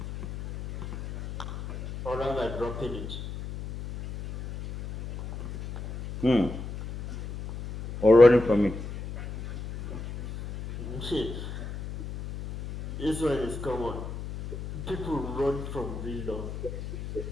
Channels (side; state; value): left; noise; hum, 9 dB below the sound